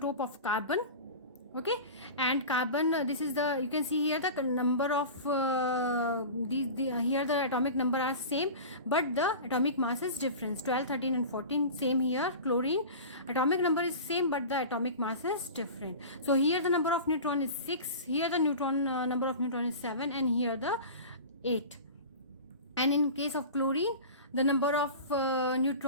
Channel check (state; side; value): inverted; both; correlation -0.33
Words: of carbon. Okay, and carbon, this is the, you can see here the number of here the atomic number are same, but the atomic mass is different. 12, 13, and 14 same here. Chlorine, atomic number is same, but the atomic mass is different. So here the number of neutron is 6, here the number of neutron is 7, and here the 8. And in case of chlorine, the number of